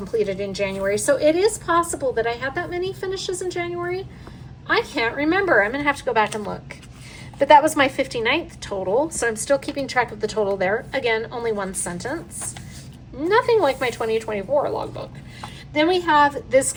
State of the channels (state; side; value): identical; both; correlation 1.00